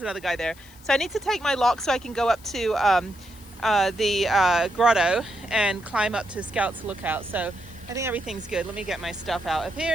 another guy there. So I need to take my lock so I can go up to the grotto and climb up to Scout's Lookout. So I think everything's good. Let me get my stuff out of here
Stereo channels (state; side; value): noise; left; hiss, 24 dB below the sound